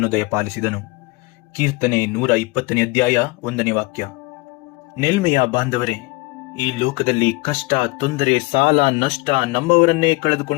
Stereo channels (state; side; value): quieter; right; 23.9 dB